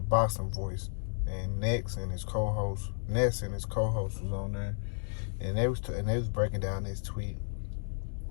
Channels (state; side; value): silent; right; digital silence